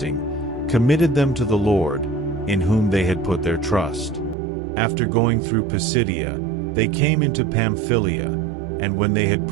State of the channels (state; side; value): drops out; left; at 4.4 s